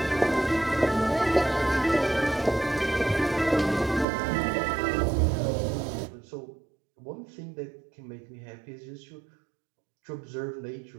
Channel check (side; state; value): left; drops out; at 4.0 s